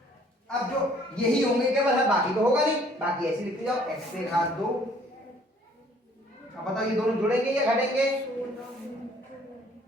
अब जो यही होंगे केवल, है बाकी तो होगा नहीं, बाकी ऐसे लिखते जाओ। एक्स पे घात 2। अब बताओ ये दोनों जुड़ेंगे या घटेंगे?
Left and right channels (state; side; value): normal; both; correlation 0.59